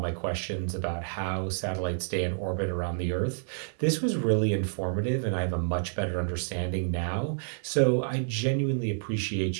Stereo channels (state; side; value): silent; left; digital silence